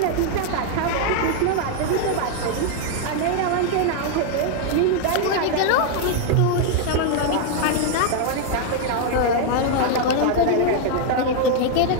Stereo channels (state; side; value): different; both; correlation 0.00